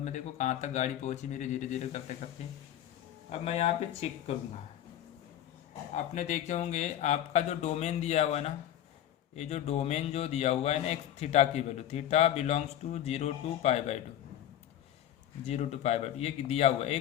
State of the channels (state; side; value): quieter; right; 11.5 dB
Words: देखो कहाँ तक गाड़ी पहुँची मेरी धीरे धीरे करते करते। अब मैं यहाँ पे चेक करूँगा, आपने देखे होंगे आपका जो डोमेन दिया हुआ है ना, ये जो डोमेन जो दिया हुआ है ना एक थीटा की value, theta belongs to 0 to π/2, 0 to π/2 ये दिया हुआ है।